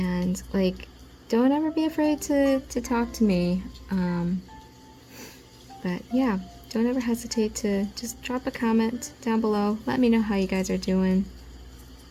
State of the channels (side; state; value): both; identical; correlation 1.00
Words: like, don't ever be afraid to talk to me. But yeah, don't ever hesitate to just drop a comment down below. Let me know how you guys are doing.